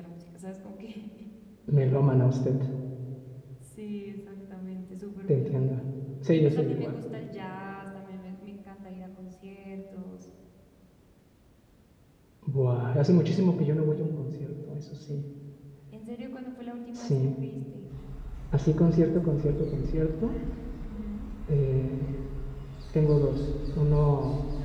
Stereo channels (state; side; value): identical; both; correlation 1.00